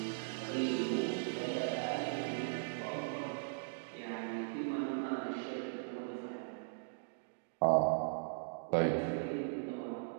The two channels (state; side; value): silent; left; digital silence